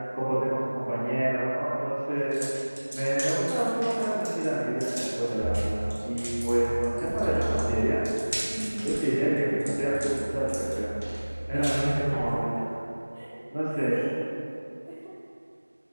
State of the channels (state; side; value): inverted; both; correlation -1.00